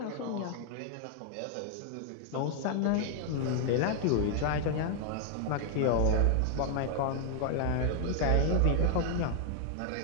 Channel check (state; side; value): different; both; correlation 0.00